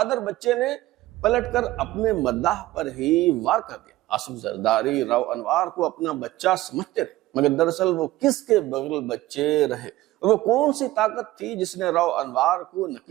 بچے نے پلٹ کر اپنے مداح پر ہی وار کر دیا۔ آصف زرداری راؤ انوار کو اپنا بچہ سمجھتے رہے، مگر دراصل وہ کس کے بغل بچے رہے، اور وہ کون سی طاقت تھی جس نے راؤ انوار کو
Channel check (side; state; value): left; quieter; 16.9 dB